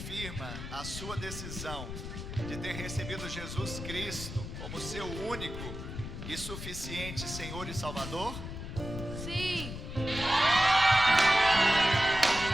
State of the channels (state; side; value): noise; left; rumble, 8 dB below the sound